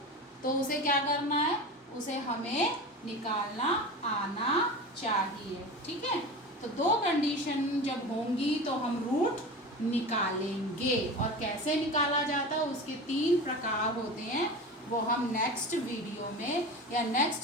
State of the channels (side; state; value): both; normal; correlation 0.30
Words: उसे क्या करना है, उसे हमें निकालना आना चाहिए। ठीक है, तो 2 कंडीशन जब होंगी तो हम रूट निकालेंगे, और कैसे निकाला जाता है उसके 3 प्रकार होते हैं, वो हम नेक्स्ट वीडियो में या